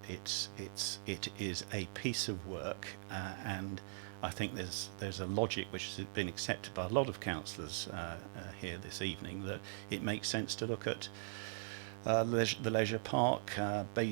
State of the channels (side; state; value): left; silent; digital silence